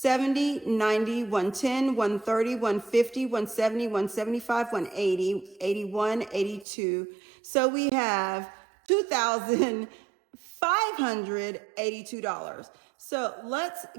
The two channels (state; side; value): drops out; left; at 6.7 s